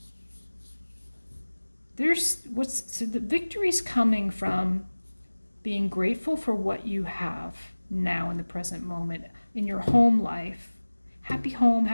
So the victory's coming from being grateful for what you have now in the present moment in your home life. Happy home,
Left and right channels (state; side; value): inverted; both; correlation -1.00